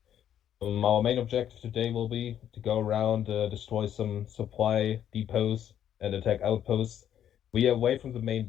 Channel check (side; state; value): right; quieter; 10.2 dB